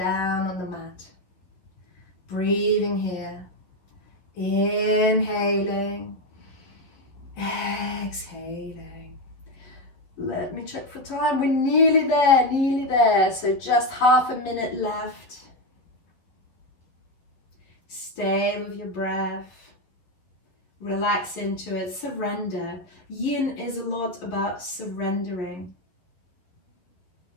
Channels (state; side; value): late; right; 11 ms